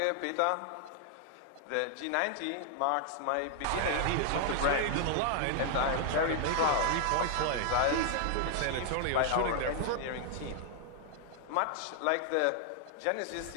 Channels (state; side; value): different; both; correlation 0.00